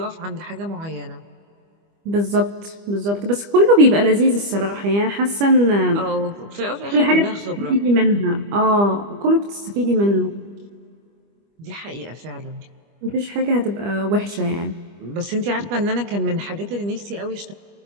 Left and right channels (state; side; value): late; left; 25 ms